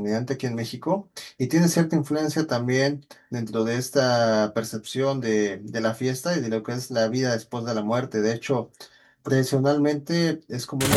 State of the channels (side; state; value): both; identical; correlation 1.00